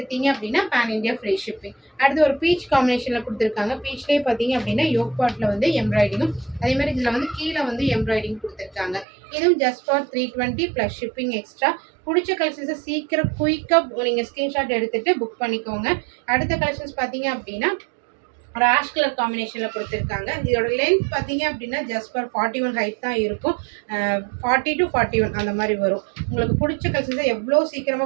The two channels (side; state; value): left; drops out; at 9.1 s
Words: அப்படின்னா பேன் இண்டியா ஃப்ரீ ஷிப்பிங். அடுத்து ஒரு பீச் காம்பினேஷனில் கொடுத்துருக்காங்க. பீச்லேயே பார்த்தீங்க அப்படின்னா யோக் பார்ட்டில் வந்து எம்ப்ராய்டிங்கும், அதே மாதிரி இதில் வந்து கீழே வந்து எம்ப்ராய்டிங் கொடுத்துருக்காங்க. இதுவும் just for 320 plus shipping extra. பிடிச்ச கலெக்ஷன்ஸை சீக்கிரம் குயிக்காக நீங்கள் ஸ்க்ரீன்ஷாட் எடுத்துகிட்டு புக் பண்ணிக்கோங்க. அடுத்த கலெக்ஷன்ஸ் பார்த்தீங்க அப்படின்னா ஒரு ஆஷ் கலர் காம்பினேஷனில் கொடுத்துருக்காங்க. இதோட லென்த் பார்த்தீங்க அப்படின்னா ஜஸ்ட் ஃபார் 41 ஹைட் தான் இருக்கும். 40 to 41 அந்த மாதிரி வரும். உங்களுக்கு பிடிச்ச கலெக்ஷன்ஸை எவ்வளோ